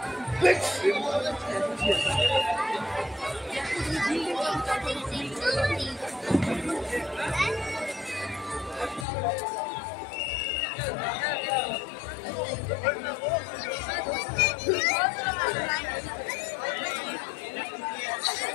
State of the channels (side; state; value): right; drops out; at 9.1 s